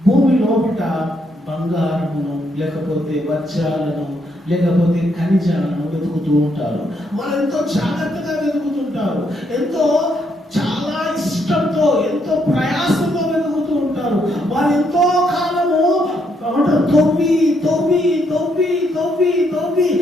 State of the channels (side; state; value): both; normal; correlation 0.75